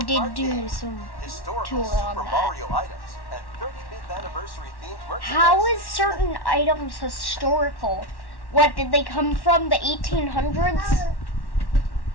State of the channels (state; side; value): late; right; 1.1 ms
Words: Kart do game. some Historical tour on Super that. Mario items and 35th anniversary themed merchandise. How is certain items historical? What, did they come from the 1800s? Well,